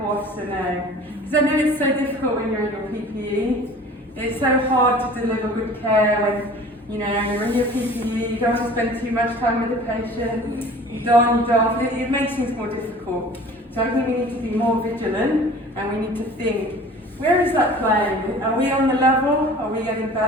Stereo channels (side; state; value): both; normal; correlation 0.45